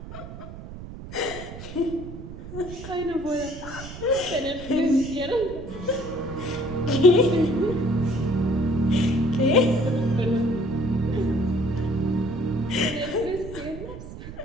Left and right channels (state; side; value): noise; right; rumble, 12 dB below the sound